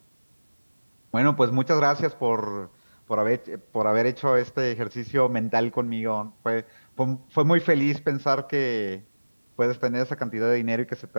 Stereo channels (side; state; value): both; inverted; correlation -1.00